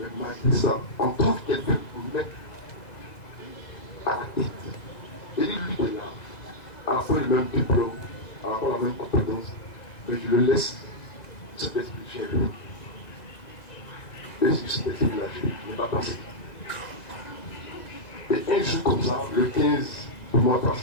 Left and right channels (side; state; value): right; late; 1.9 ms